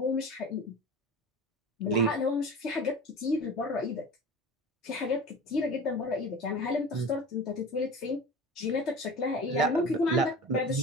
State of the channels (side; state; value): both; normal; correlation 0.35